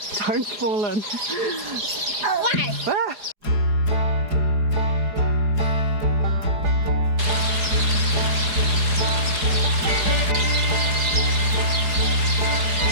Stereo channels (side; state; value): left; late; 4.7 ms